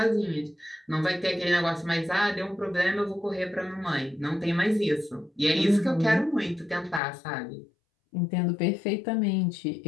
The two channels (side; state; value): right; drops out; at 7.0 s